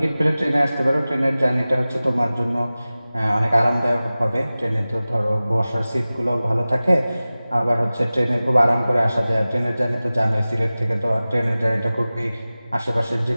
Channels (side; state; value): both; inverted; correlation -0.97